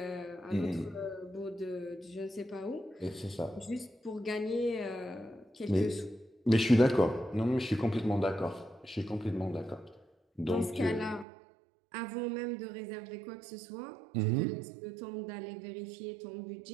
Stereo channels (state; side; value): drops out; left; at 11.2 s